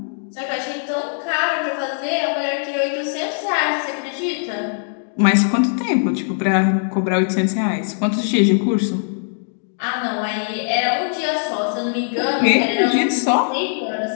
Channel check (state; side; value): silent; right; digital silence